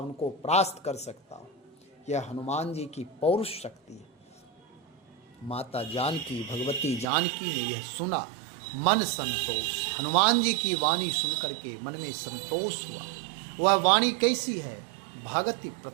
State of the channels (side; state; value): left; drops out; at 7.1 s